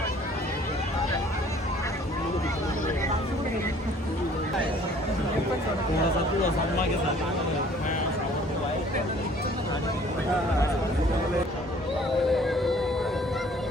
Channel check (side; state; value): both; normal; correlation 0.55